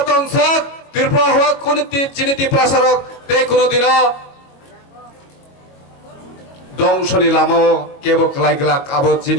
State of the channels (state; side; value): late; right; 22 ms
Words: তংসাক ত্রিপুরা হওয়া কোন চিনি ত্রিপ্রাসারক তে কোনদিনও দংশনি লামো কেবো ক্লাইগ্লাক আবো